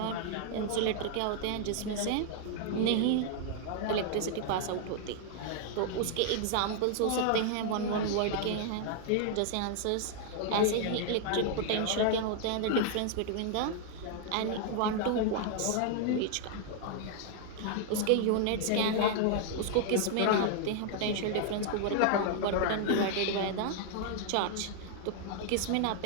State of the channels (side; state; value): both; different; correlation 0.00